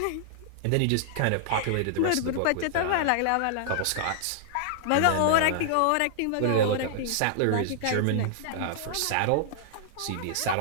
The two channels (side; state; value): both; different; correlation -0.01